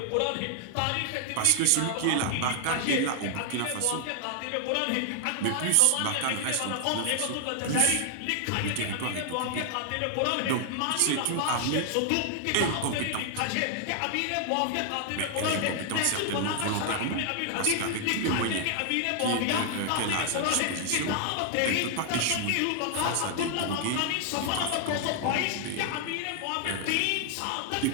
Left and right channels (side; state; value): both; different; correlation 0.00